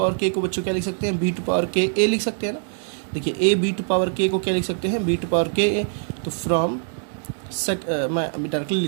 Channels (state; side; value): silent; left; 63 dB below the other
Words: के को बच्चों क्या लिख सकते हैं, बी टू पावर के ए लिख सकते हैं ना। देखिए ए बी टू पावर के को क्या लिख सकते हैं, बी टू पावर के ए, तो फ्रॉम मैं अभी डायरेक्टली